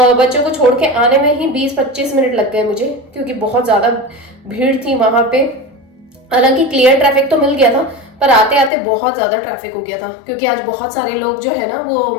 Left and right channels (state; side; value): drops out; right; at 8.7 s